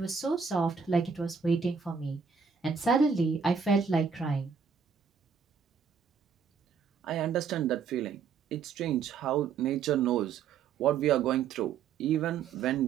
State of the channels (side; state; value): left; quieter; 6.2 dB